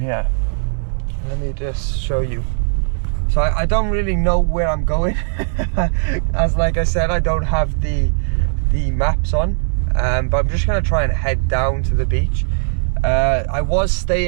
here. Let me just show you. So I don't really know where I'm going. As like I said, I don't have the maps on, but I'm just gonna try and head down to the beach. I was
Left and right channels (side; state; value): left; silent; digital silence